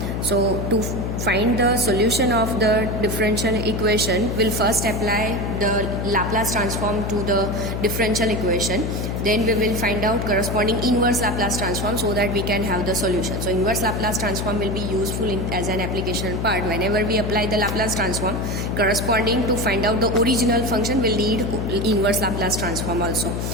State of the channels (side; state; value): left; noise; hum, 2 dB below the sound